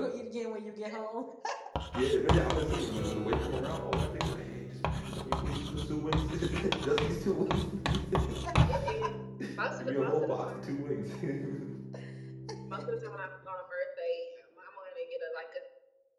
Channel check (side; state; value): both; identical; correlation 1.00